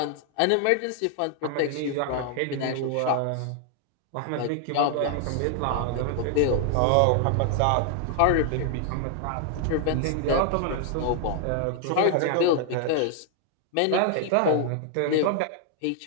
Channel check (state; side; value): different; both; correlation 0.00